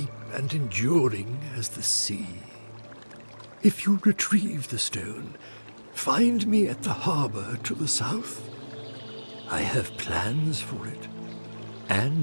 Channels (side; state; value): both; inverted; correlation -1.00